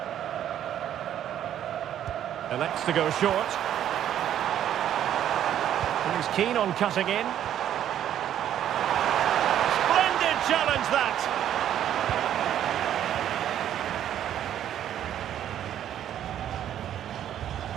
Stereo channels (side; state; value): left; quieter; 10.7 dB